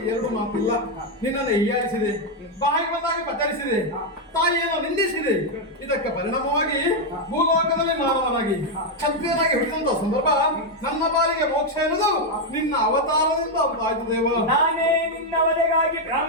ಎರಡು ಮಾತಿಲ್ಲ. ನಿನ್ನನ್ನು ಹೀಯಾಳಿಸಿದೆ, ಬಾಯಿ ಬಂದಾಗಿ ಪಚರಿಸಿದೆ, ತಾಯಿಯನ್ನು ನಿಂದಿಸಿದೆ. ಇದಕ್ಕೆ ಪರಿಣಾಮವಾಗಿ ಭೂಲೋಕದಲ್ಲಿ ಮಾನವನಾಗಿ ಕ್ಷತ್ರಿಯನಾಗಿ ಹುಟ್ಟಿದಂತ ಸಂದರ್ಭ ನನ್ನ ಪಾಲಿಗೆ ಮೋಕ್ಷ ಎನ್ನುವುದು ನಿನ್ನ ಅವತಾರದಿಂದ ಆಯ್ತು ದೇವ. ನಾನೇ ನಿನ್ನ ವಧೆಗಾಗಿ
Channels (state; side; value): normal; both; correlation 0.02